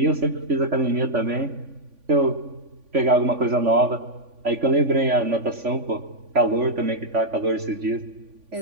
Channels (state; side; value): late; left; 3.5 ms